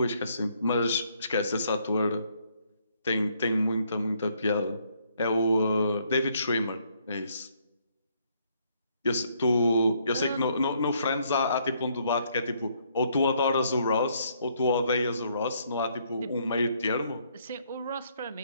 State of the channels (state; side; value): inverted; both; correlation -0.69